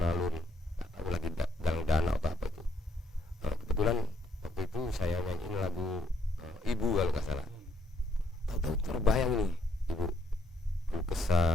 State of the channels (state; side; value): normal; both; correlation 0.72